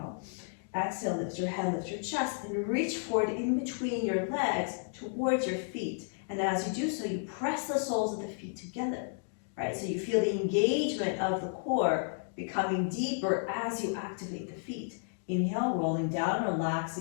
Exhale, lift your head, lift your chest, and reach forward in between your legs towards your feet. And as you do so, you press the soles of the feet together, right? So you feel the engagement of the core becoming deeper as you activate the feet. Inhale, rolling down,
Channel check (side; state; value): right; silent; digital silence